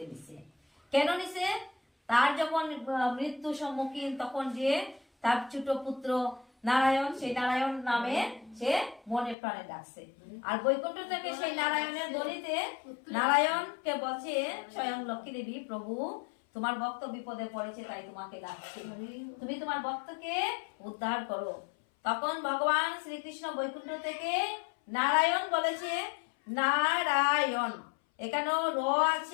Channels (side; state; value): right; drops out; at 9.3 s